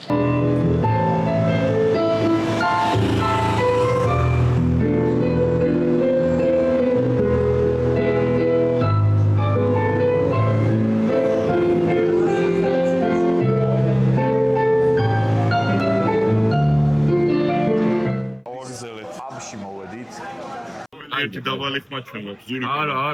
ერთი დაბალი ხმა ჩვენ გვაქვს ზური.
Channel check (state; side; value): identical; both; correlation 1.00